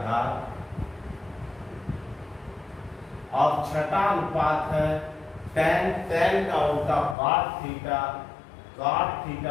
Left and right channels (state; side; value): drops out; right; at 7.2 s